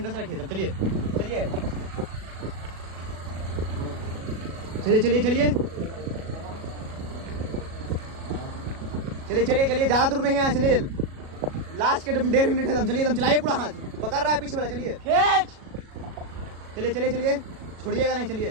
रखिए, चलिए ज्यादा दूर नहीं है, चलिए लास्ट के 1.5 मिनट है दम। चलिए एकदम चलाइए, पूरा हाथ पकड़ रहा है पीछे वाला, चलिए चलिए छोड़िएगा नहीं,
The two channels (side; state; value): left; late; 37 ms